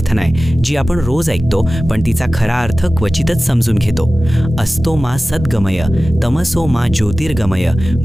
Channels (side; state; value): both; normal; correlation 0.96